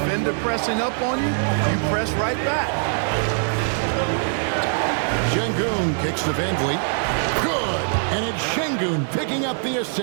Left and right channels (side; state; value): left; silent; digital silence